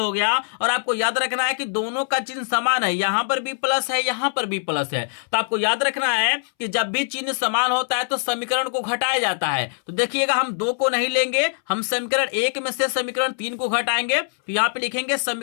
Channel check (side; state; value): right; silent; 63 dB below the other